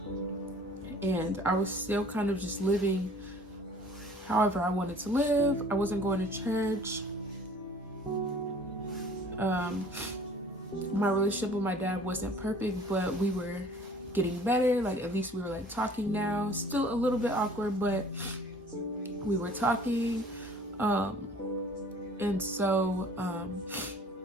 and I was still kind of just living however I wanted to live. I wasn't going to church. My relationship with my dad wasn't perfect, but we were getting better. Like, at least we were like talking now. Still a little bit awkward, but we were talking. And so,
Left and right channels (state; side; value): normal; both; correlation 0.51